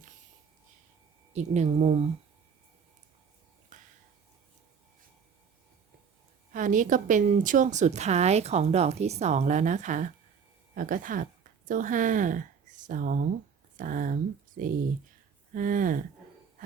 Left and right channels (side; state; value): left; quieter; 6.6 dB